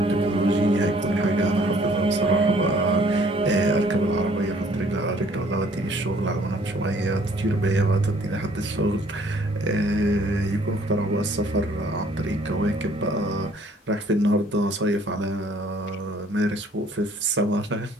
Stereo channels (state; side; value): normal; both; correlation 0.59